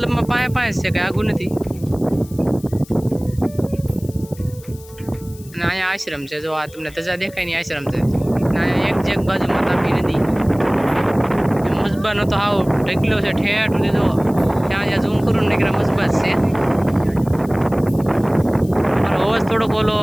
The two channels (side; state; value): left; noise; hiss, 22 dB below the sound